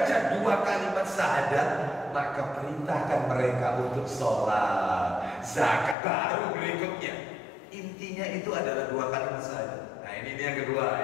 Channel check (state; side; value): drops out; right; at 6.0 s